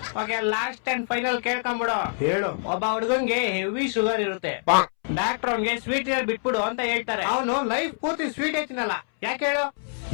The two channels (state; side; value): silent; right; 61 dB below the other